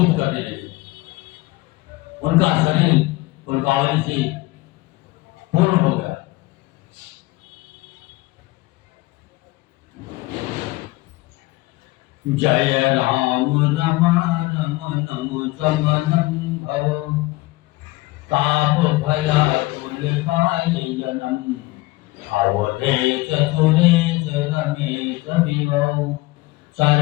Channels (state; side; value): quieter; right; 20.7 dB